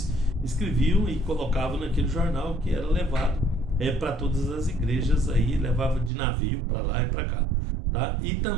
escreviam e colocavam naquele jornal, que era levado para todas as igrejas, aí levava de navio para lá e para cá, tá? E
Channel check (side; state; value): left; drops out; at 6.1 s